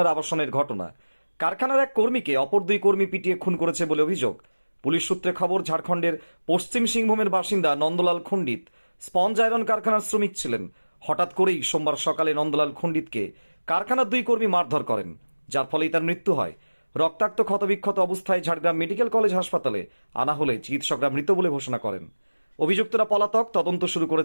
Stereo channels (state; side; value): inverted; both; correlation -1.00